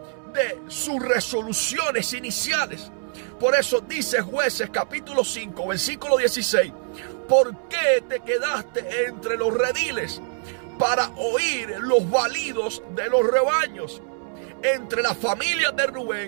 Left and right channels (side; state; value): left; silent; 62 dB below the other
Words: de sus resoluciones iniciales. Por eso dice Jueces capítulo 5, versículo 16: ¿por qué te quedaste entre los rediles para oír los balidos de los rebaños? Entre las familias de